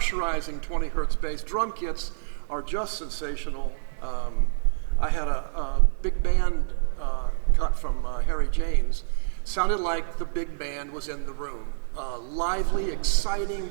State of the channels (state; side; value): silent; left; digital silence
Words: 20 hertz bass. Drum kits are just sensational. I had a big band cut from Harry James. Sounded like the big band was in the room. Lively, exciting,